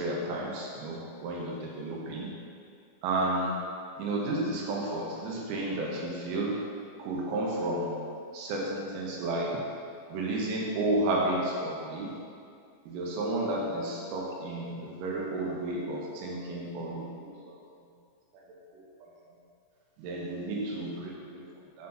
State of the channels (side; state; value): left; late; 15 ms